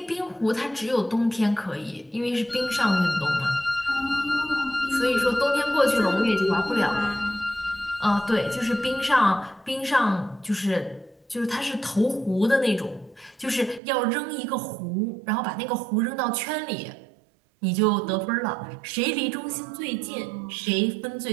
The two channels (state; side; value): drops out; left; at 13.8 s